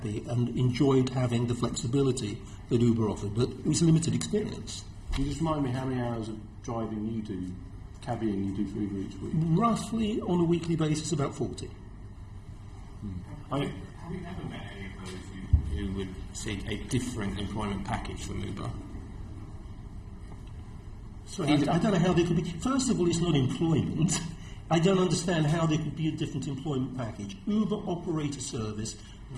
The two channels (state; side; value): identical; both; correlation 1.00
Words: and enjoyed having the flexibility that Uber offered, but it was a limited experience. Can you just remind me how many hours of driving you do, cabbying you do for Uber each week? Roughly, on a weekly basis, about 40. Have you ever met any of those who would seek a different employment package from Uber? Sorry, I don't know how they could be. First of all, it's not employment. I don't understand how there could be a different employment package. Uber operate a service